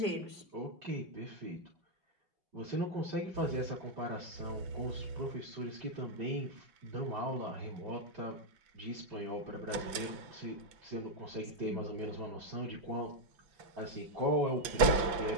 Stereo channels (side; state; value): left; late; 5.9 ms